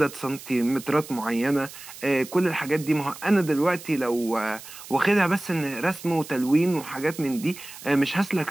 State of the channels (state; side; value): noise; right; hiss, 15 dB below the sound